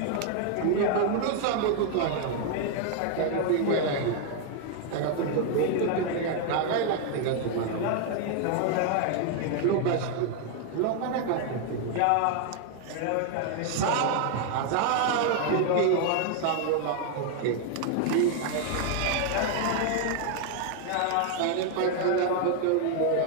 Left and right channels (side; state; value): both; different; correlation 0.00